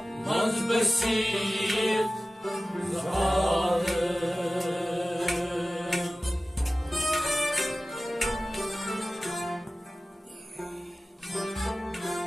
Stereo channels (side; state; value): both; normal; correlation 0.96